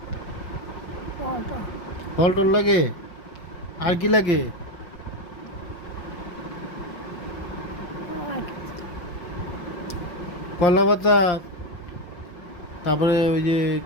কর্তা ফল টল লাগে। আর কি লাগে? আর কলা পাতা, তারপরে ওই যে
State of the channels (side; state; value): right; late; 5.7 ms